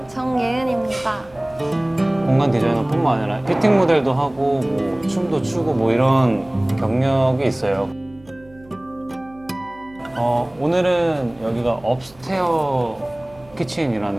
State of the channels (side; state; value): right; noise; hum, 26 dB below the sound